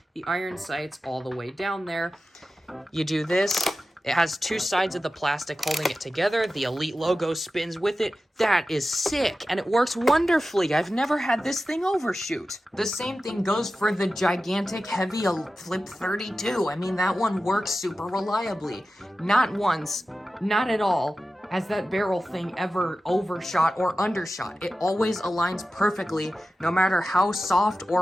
the iron sights all the way down there. You do this. It has two sides of the plastic holding it together. The Elite logo spins with it. That is sick, and it works wonderfully. I've never had this thing overshoot. The same thing goes for the gigantic, heavy Flip-32. I mean, that one works super reliably. Not once, not at all, has that barrel thing ever overshot or undershot. It always aligns perfectly, no matter how soft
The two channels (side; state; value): both; normal; correlation 0.93